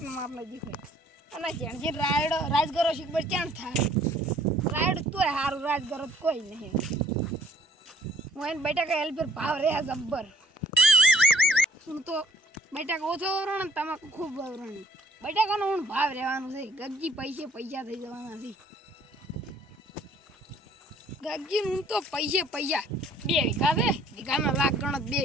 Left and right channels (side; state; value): both; normal; correlation 0.60